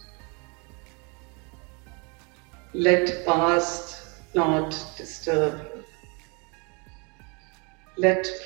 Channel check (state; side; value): quieter; left; 32.3 dB